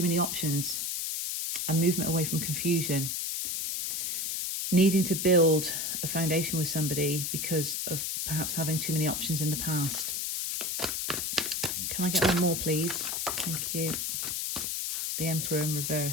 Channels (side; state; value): left; noise; hiss, 1 dB below the sound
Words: many options, and movement away from confusion. Needing to build a foundation with somebody because of perhaps having too many options in the past. Can I get one more, please? Thank you. The Emperor in